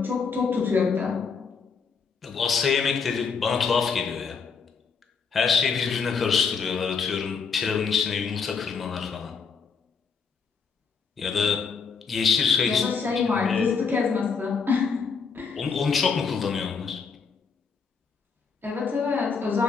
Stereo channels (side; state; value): right; quieter; 5.6 dB